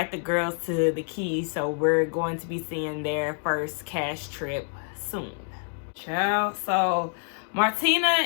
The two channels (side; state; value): right; silent; 56 dB below the other